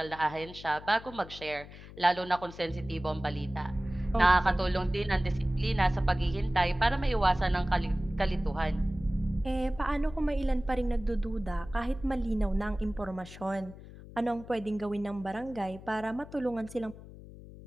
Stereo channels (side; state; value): left; noise; hum, 16 dB below the sound